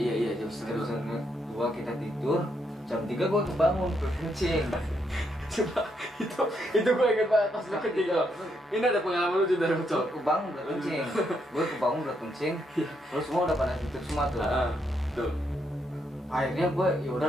jam Jam 1:30. setengah dua kita tidur, jam 3 gue kebangun berkencing. Coba itu gue inget banget pas lu kencing lo. Ini ada pengalaman lucu dari Gue Ucok. kebangun berkencing, terus semua udah pada tidur semua tuh. Tuh. Akhirnya gue ya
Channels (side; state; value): both; normal; correlation 0.77